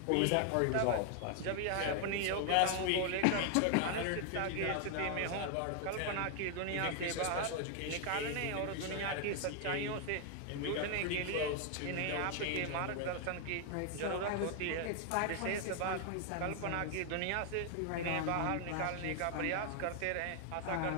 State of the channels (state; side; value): different; both; correlation 0.00